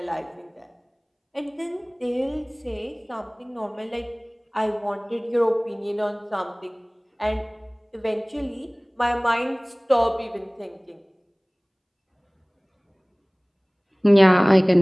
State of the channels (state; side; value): identical; both; correlation 1.00